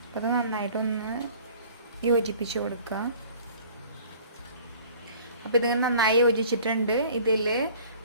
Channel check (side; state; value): both; inverted; correlation -0.50